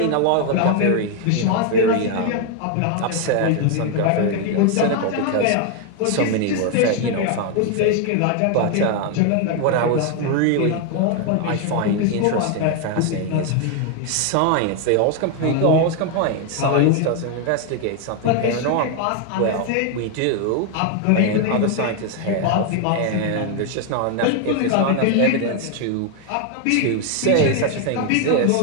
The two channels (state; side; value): different; both; correlation 0.01